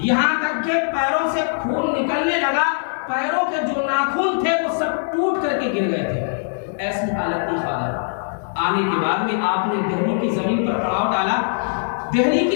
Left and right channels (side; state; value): right; silent; digital silence